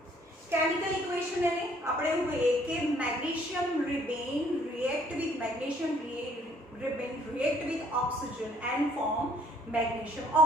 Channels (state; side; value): normal; both; correlation 0.62